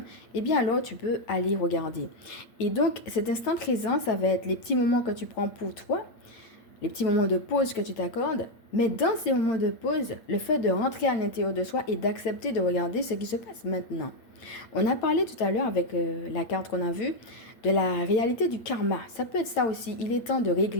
eh bien alors tu peux aller regarder. Et donc, cet instant présent, ça va être les petits moments que tu prends pour toi, les petits moments de pause que tu t'accordes. Mais dans ces moments de pause, le fait de rentrer à l'intérieur de soi et d'accepter de regarder ce qui se passe maintenant. On a parlé tout à l'heure avec la carte qu'on a vue de la réalité du karma. Ça peut être ça aussi. Il est temps de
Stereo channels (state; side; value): late; right; 8.9 ms